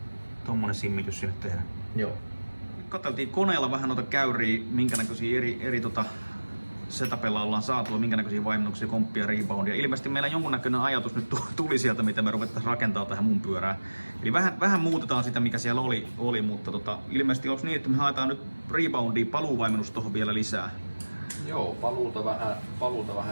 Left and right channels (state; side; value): inverted; both; correlation -1.00